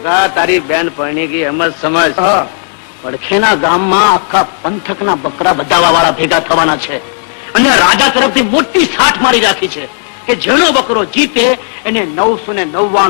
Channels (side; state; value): right; silent; digital silence